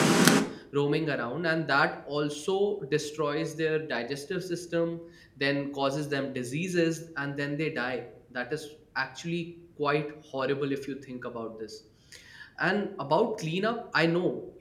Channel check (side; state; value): both; identical; correlation 1.00